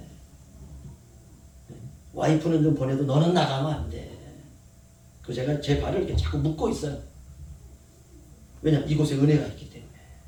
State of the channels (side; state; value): both; identical; correlation 1.00